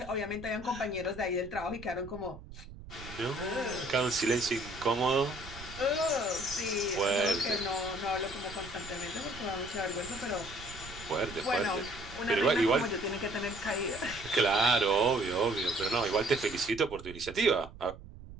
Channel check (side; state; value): right; noise; rumble, 15 dB below the sound